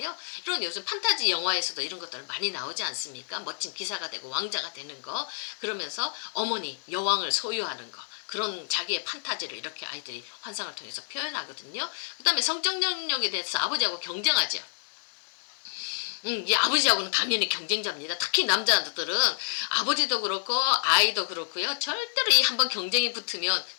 이런 요즘 판타지 영화에서도 이런 것들 많이 나오지 않습니까? 멋진 기사가 되고 왕자가 되는 거, 그러면서 어머니, 여왕을 소유하는 거, 그런 자기의 판타지를 이렇게 아이들이 환상을 통해서 표현하거든요. 그 다음에 성적 능력에 대해서 아버지하고 경쟁하죠. 이 아버지하고는 당연히 경쟁자입니다. 특히 남자들은 아버지도 그렇고 아이도 그렇고요. 절대로 이 한번 경쟁이 붙으면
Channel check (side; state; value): right; silent; digital silence